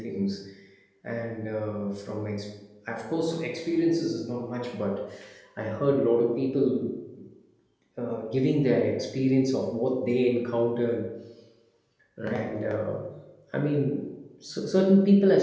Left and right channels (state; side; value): identical; both; correlation 1.00